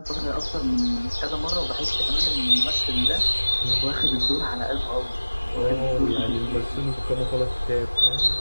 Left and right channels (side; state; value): both; inverted; correlation -1.00